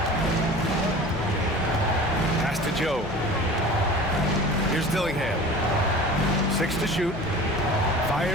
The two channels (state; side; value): noise; left; hum, 15 dB below the sound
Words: Pass to Joe. Here's Dillingham. 6 to shoot.